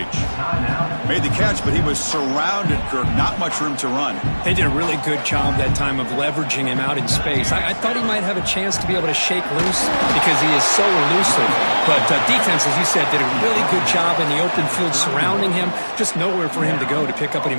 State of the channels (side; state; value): both; inverted; correlation -1.00